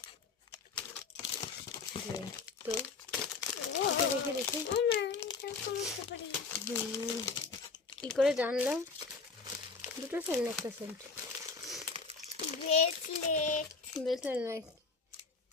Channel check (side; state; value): right; quieter; 4.5 dB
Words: তো এটা দেখে দেখি ও মা, এটা বুঝতে পারি। কি করে জানলাম? দুটো সেন্ট, একটা সেন্ট। ব্রেসলেট। ব্রেসলেট নয়,